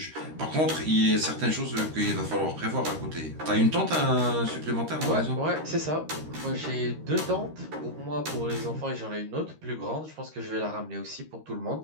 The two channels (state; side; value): late; left; 13 ms